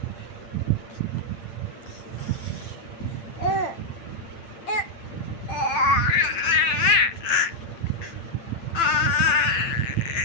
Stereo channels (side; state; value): right; late; 8.9 ms